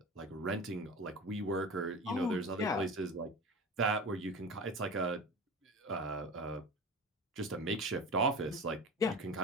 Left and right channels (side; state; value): both; normal; correlation 0.32